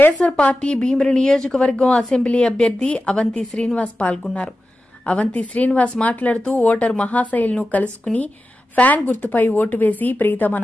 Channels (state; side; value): normal; both; correlation 0.93